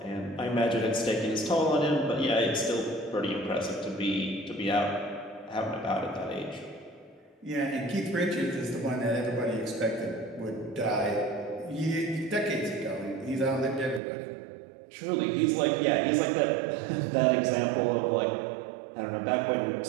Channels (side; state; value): left; drops out; at 14.0 s